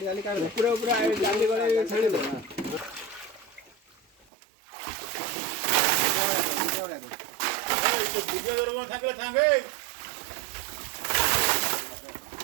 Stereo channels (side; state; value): left; drops out; at 4.2 s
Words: जाली काट दे पूरा पूरा जाली गले छाड़ी दे पूजा करो ठाके ठाके